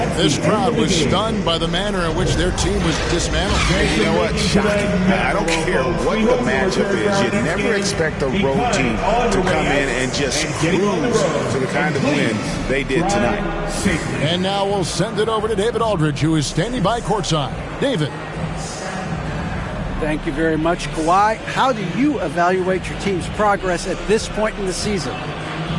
This crowd was stunned by the manner in which their team was dismantled. You know what? Shocking. I don't care what the matchup is. You never expect a road team to come in and just cruise to the kind of win they did tonight. And now we'll send it over to David Aldridge, who is standing by courtside. David. Thank you very much, Kawhi. How do you evaluate your team's progress at this point in the season?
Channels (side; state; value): both; identical; correlation 1.00